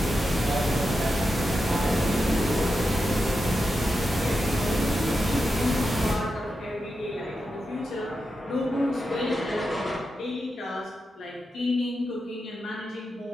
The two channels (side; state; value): both; normal; correlation 0.88